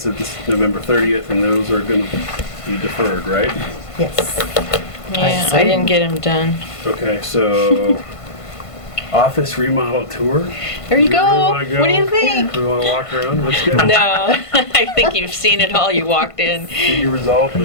of this November 30th, and those are going to be deferred, right? Yes. Yeah, I didn't get them done. Okay, so office remodel tour. There you Do we go. wanna go? What do you think? Do we want to walk around? Let's go. No, I think you've seen it all. You walked in. Did you resolve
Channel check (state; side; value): late; right; 1.5 ms